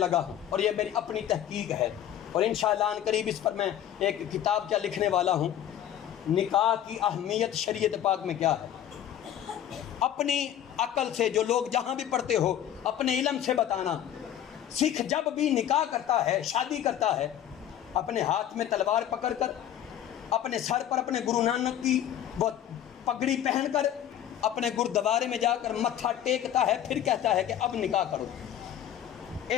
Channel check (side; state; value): right; quieter; 10.9 dB